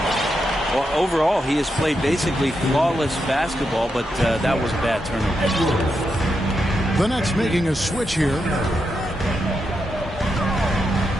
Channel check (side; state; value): both; normal; correlation 0.85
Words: Well, overall, he has played basically flawless basketball, but that was a bad turnover. The Nets making a switch here